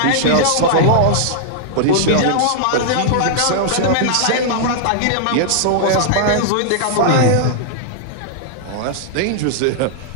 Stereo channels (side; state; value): both; different; correlation -0.01